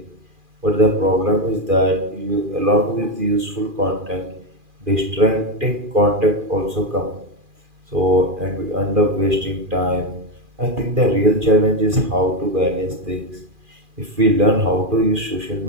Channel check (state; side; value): late; left; 2.4 ms